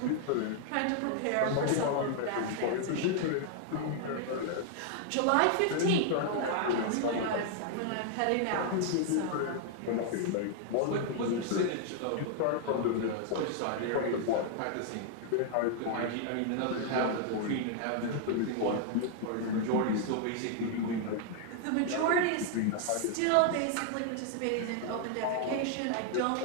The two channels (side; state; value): both; different; correlation 0.00